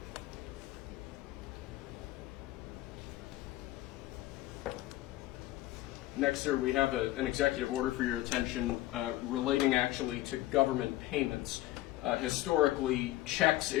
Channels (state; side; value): quieter; right; 16.5 dB